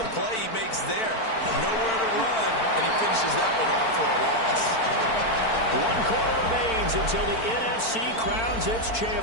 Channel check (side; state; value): right; late; 4.5 ms